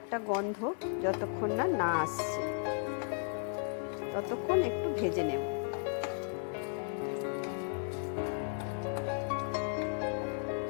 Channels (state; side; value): silent; right; 54 dB below the other